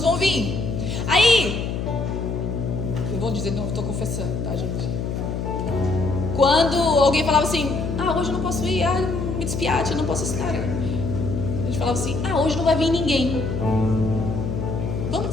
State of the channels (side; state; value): left; noise; hum, 3 dB below the sound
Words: vão vir. Aí, eu vou dizer, não, estou confessando, tá, gente? Quando alguém falava assim: hoje eu não posso ir, me despiate, eu não posso estar. A gente falava assim: hoje não vai vir ninguém, vamos